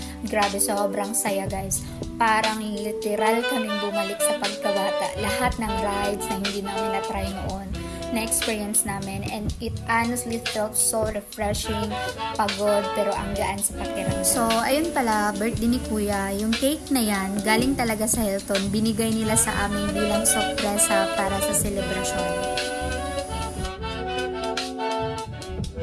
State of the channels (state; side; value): identical; both; correlation 1.00